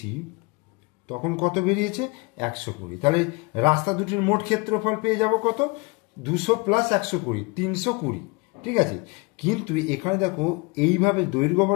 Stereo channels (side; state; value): right; quieter; 27.7 dB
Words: তখন কত বেরিয়েছে 120। তাহলে রাস্তা দুটির মোট ক্ষেত্রফল পেয়ে যাব কত, 200 প্লাস 120, 320, ঠিক আছে। কিন্তু এখানে দেখো এইভাবে দৈর্ঘ্য